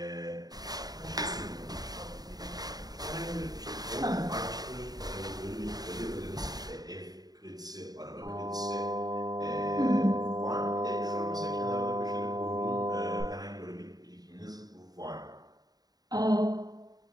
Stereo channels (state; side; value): late; left; 0.19 ms